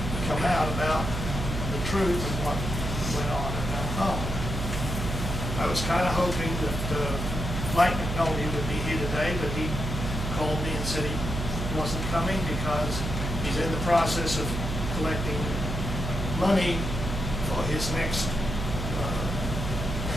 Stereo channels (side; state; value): right; noise; hum, 3 dB below the sound